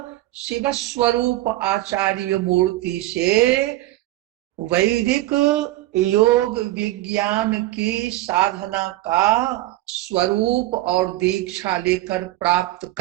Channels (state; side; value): quieter; left; 16.7 dB